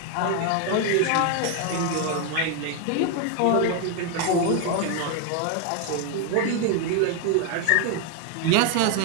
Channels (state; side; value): different; both; correlation 0.00